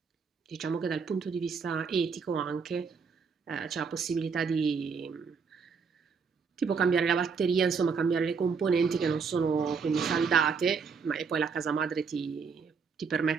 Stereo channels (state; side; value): quieter; left; 5.5 dB